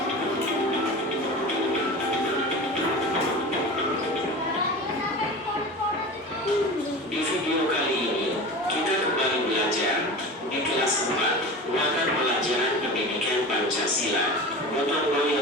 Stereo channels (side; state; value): both; normal; correlation 0.32